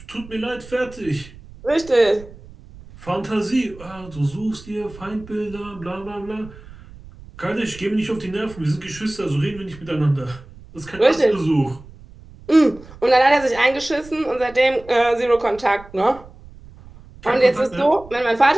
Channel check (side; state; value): right; noise; rumble, 19 dB below the sound